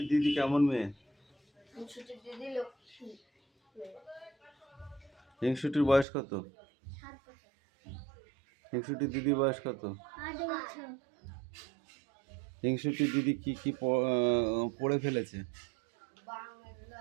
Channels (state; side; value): drops out; left; at 6.1 s